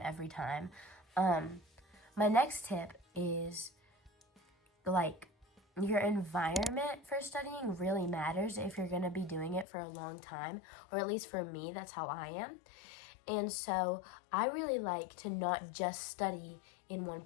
every time. My next tip is, like, your environment for studying really matters if you're going to be doing it for a long time, or at least for me, that's how I am. And so I really like to not just study in one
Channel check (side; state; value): right; drops out; at 9.7 s